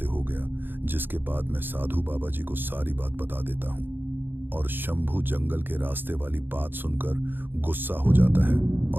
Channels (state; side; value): late; left; 0.097 ms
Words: हो गया। जिसके बाद मैं साधु बाबा जी को सारी बात बता देता हूँ और शंभू जंगल के रास्ते वाली बात सुनकर गुस्सा हो जाता है